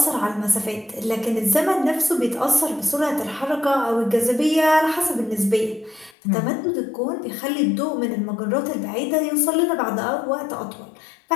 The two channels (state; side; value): drops out; right; at 6.2 s